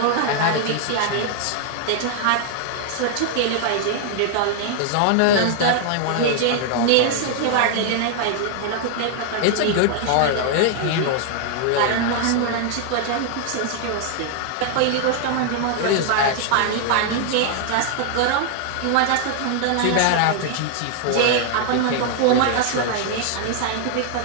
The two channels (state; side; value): different; both; correlation 0.00